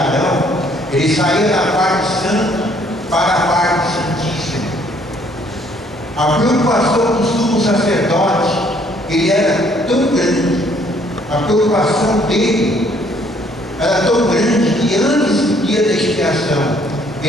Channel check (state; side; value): normal; both; correlation 0.63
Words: Arão, ele saía da parte santa para a parte santíssima. A preocupação do sumo sacerdote, ele era tão grande, a preocupação dele era tão grande que antes do dia da expiação,